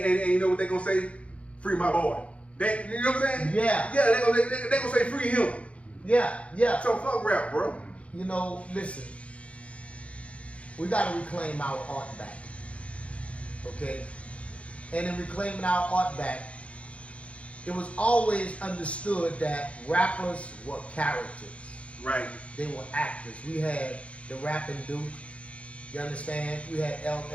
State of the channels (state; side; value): late; right; 0.063 ms